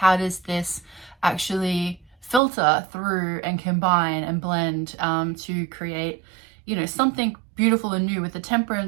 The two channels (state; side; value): drops out; left; at 2.4 s